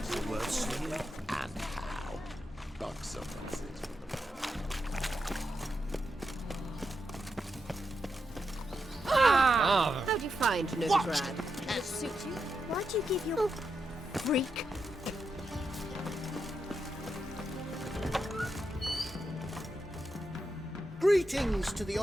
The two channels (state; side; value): normal; both; correlation 0.85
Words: Worth seeing. And how? Bucks up, that's it. How'd you find Novigrad? Does it suit you? Why'd you give your Freak. Greetings to the